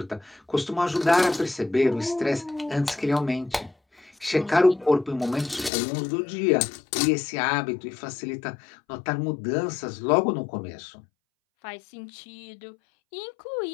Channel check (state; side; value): drops out; right; at 5.7 s